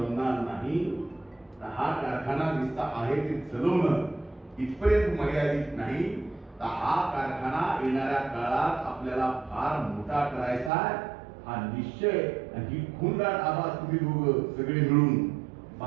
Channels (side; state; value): left; drops out; at 10.7 s